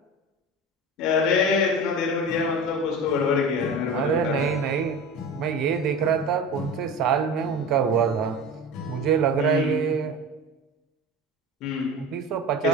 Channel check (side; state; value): both; normal; correlation 0.31